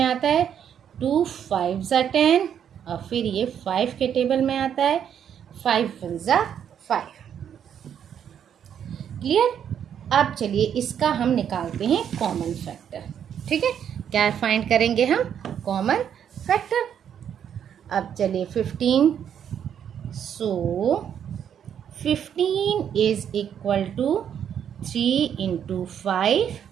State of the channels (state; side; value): quieter; left; 8.8 dB